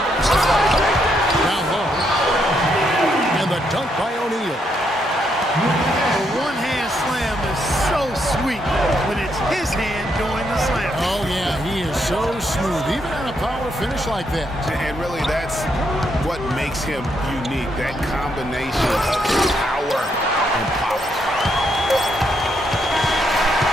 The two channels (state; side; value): normal; both; correlation 0.77